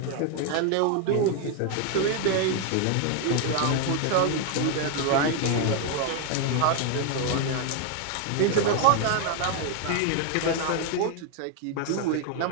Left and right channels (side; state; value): both; different; correlation 0.01